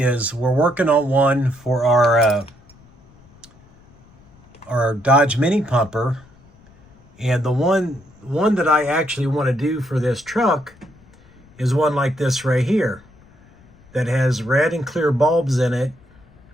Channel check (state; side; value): noise; left; rumble, 27 dB below the sound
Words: we're working on one for our Dodge Mini Pumper, and the one that I actually want to do for this truck is one like this right here that has red and clear bulbs in it